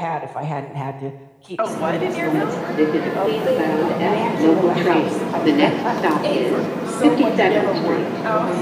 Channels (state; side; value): identical; both; correlation 1.00